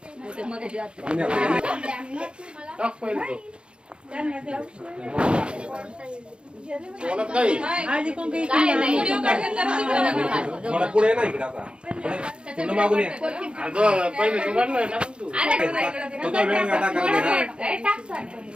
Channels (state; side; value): late; left; 0.054 ms